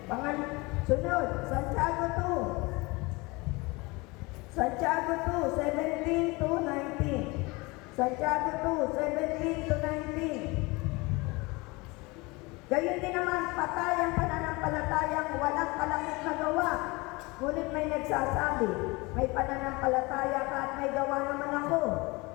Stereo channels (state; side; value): quieter; right; 24.8 dB